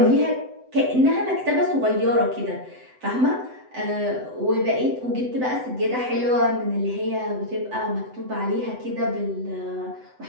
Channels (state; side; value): late; left; 7.9 ms